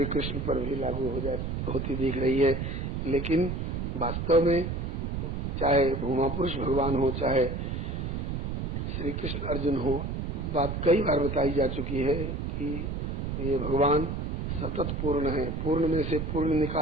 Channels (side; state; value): right; noise; rumble, 3 dB below the sound